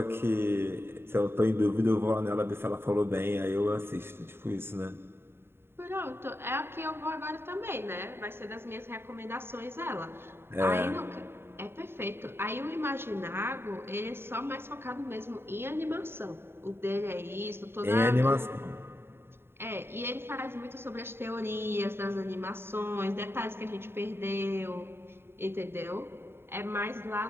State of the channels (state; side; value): late; left; 0.11 ms